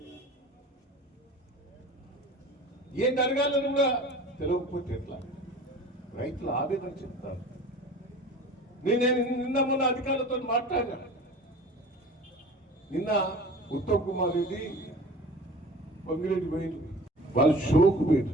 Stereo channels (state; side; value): normal; both; correlation 0.41